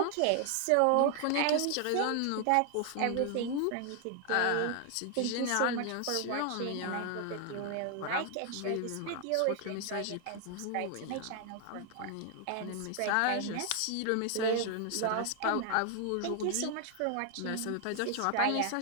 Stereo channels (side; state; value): both; different; correlation 0.00